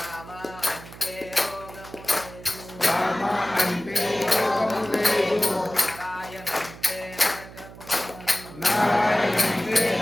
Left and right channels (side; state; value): right; noise; hum, 17 dB below the sound